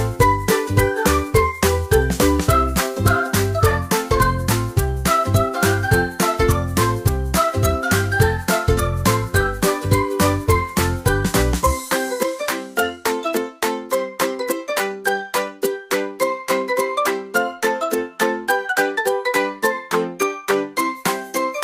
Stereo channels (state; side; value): identical; both; correlation 1.00